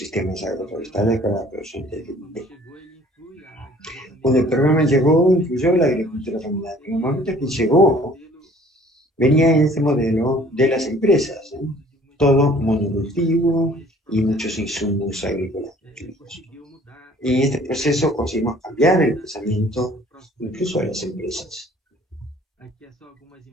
agroforestales para la producción de Dendé. Cuando el programa llegó, incluyó la agricultura familiar. En el momento que llegó, venía en este modelo de las empresas, ¿eh? Todo monocultivo y muchos insumos agrícolas. Y en este proceso conseguimos cambiar el pensamiento incluso de las empresas.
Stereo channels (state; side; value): normal; both; correlation 0.54